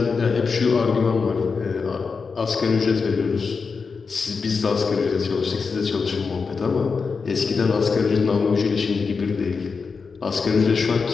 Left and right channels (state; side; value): quieter; right; 5.0 dB